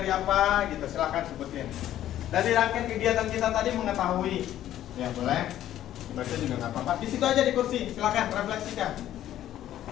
apa gitu, silahkan sebutin. Dari rangkaian kegiatan kita tadi mengetahui. Ya boleh. Baca juga nggak apa-apa. Di situ aja di kursi, silahkan refleksikan.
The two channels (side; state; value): right; quieter; 12.3 dB